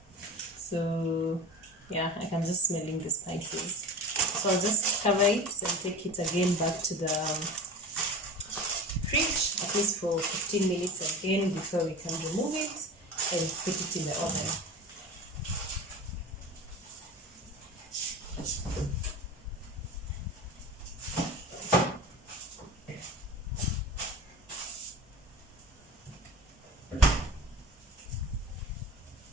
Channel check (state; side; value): normal; both; correlation 0.34